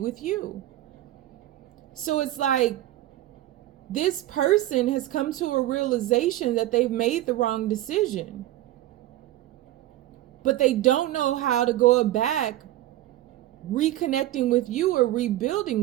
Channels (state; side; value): quieter; left; 14.8 dB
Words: you. So it's like this person has come to a realization that they've made the wrong decision, but they don't know how to go back reconnecting with you or